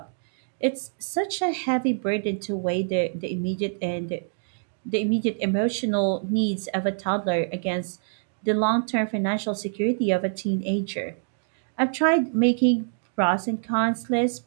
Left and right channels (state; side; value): silent; left; digital silence